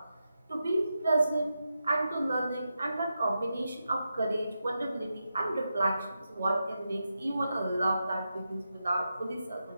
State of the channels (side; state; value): both; inverted; correlation -0.88